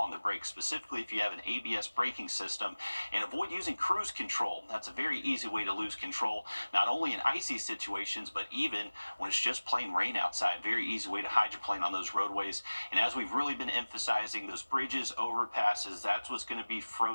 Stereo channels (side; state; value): both; inverted; correlation -1.00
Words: the brakes, specifically if you have an ABS braking system, and avoid using cruise control. That's a very easy way to lose control, not only in icy situations, but even when it's just plain rain outside. Very easy way to hydroplane on those roadways. And as we've really been emphasizing, those bridges, overpasses, that's what's going to be